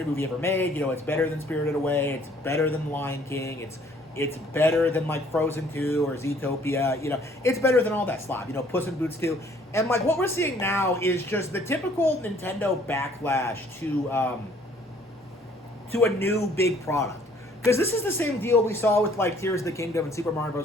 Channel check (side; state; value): both; normal; correlation 0.59